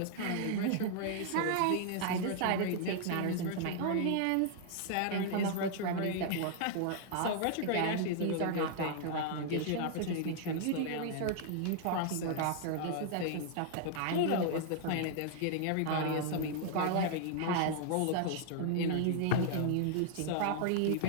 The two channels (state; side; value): different; both; correlation -0.01